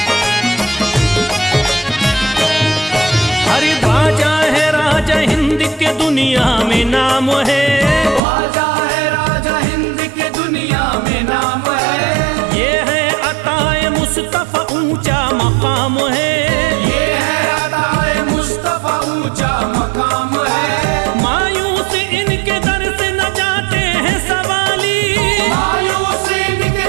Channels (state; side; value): drops out; left; at 8.2 s